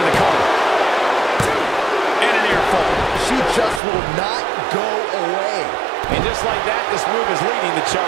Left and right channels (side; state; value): left; drops out; at 3.8 s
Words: the cover. And an earful. She just will not go away. And just like that, this move is leading the